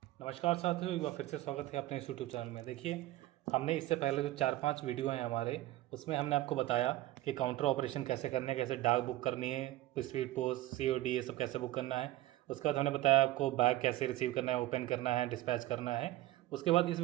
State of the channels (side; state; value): left; quieter; 16.2 dB